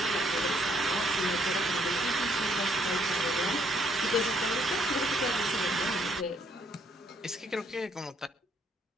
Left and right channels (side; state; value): both; normal; correlation 0.68